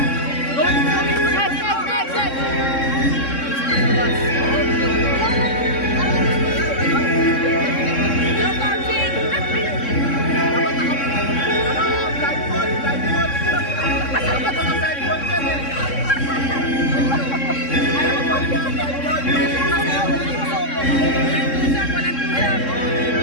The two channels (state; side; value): late; right; 3.6 ms